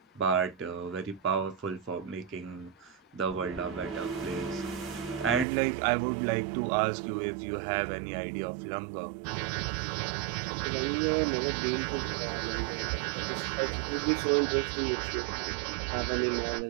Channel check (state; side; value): drops out; left; at 5.5 s